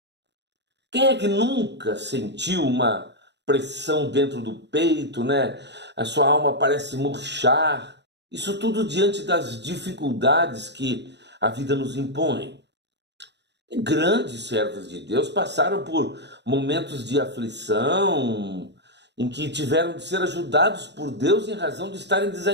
Quem é que nunca sentiu uma pressão dentro do peito, né? A sua alma parece murchar. Isso tudo diante das dificuldades que a vida nos impõe. E grandes servos de Deus passaram por momentos de aflição, em que tiveram de ser ajudados por Deus em razão de estarem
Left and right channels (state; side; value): late; left; 0.50 ms